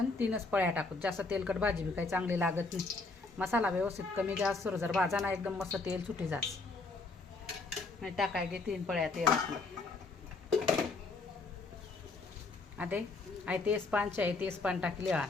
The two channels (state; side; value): quieter; right; 3.7 dB